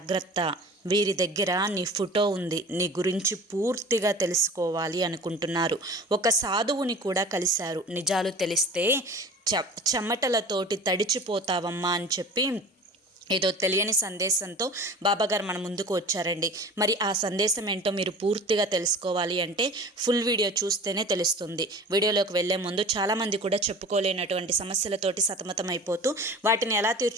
వీరి దగ్గర నీ ఫోటో ఉంది, నీ గురించి పూర్తిగా తెలుసుకోవాలి అనుకుంటున్నారు. ఒక సాధువుని కూడా కలిశారు. నిజాలు తెలిస్తే చెమటలతోటి తడిచిపోతావమ్మా అని చెప్పి ఏదో తెలియని సందేశంతో బాబాగారు మన ముందుకు వచ్చారండి. మరి ఆ సందేశం ఏంటో మీరు పూర్తిగా తెలుసుకోవాలి అంటే ఫుల్ వీడియో చూస్తేనే తెలుస్తుంది. వీడియోలోకి వెళ్లే ముందు చాలామంది కూడా చెప్పుకోలేనటువంటి సమస్యలతోటి సతమతం అయిపోతూ వాటిని ఎలా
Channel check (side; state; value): both; normal; correlation 0.39